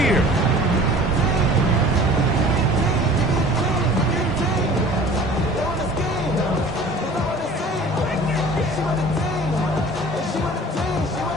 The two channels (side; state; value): both; normal; correlation 0.46